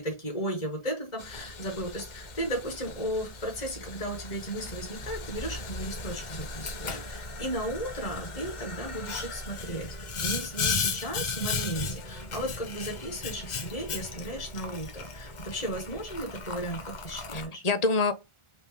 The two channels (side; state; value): right; late; 1.4 ms